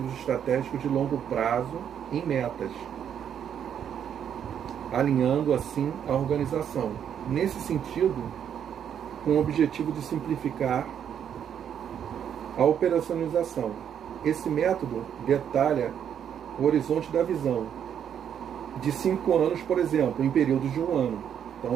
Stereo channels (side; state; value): left; quieter; 8.8 dB